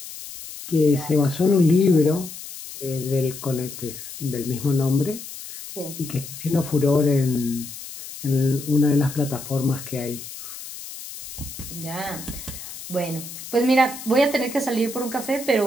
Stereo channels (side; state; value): left; noise; hiss, 12 dB below the sound